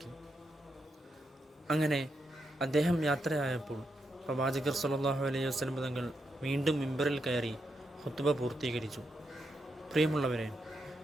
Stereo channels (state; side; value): normal; both; correlation 0.83